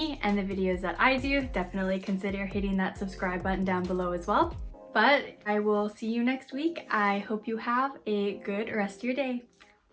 and the videos that I do, definitely consider hitting that subscribe button down below as well. But I will see you next week. I hope you have a good rest of your day.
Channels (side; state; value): both; identical; correlation 1.00